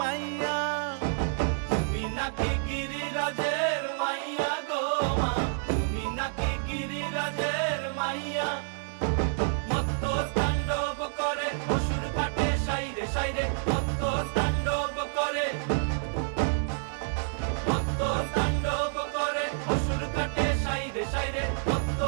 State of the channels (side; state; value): left; silent; digital silence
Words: মাইয়া, তুমি নাকি গিরিরাজের মাইয়া গো মা, তুমি নাকি গিরিরাজের মাইয়া। মত্ত তাণ্ডব করে অসুর কাটে সাইরে সাইরে, মত্ত তাণ্ডব করে, মত্ত তাণ্ডব করে অসুর কাটে সাইরে সাইরে, মত্ত